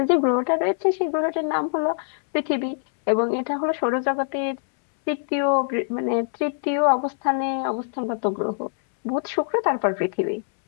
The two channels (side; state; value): right; silent; 63 dB below the other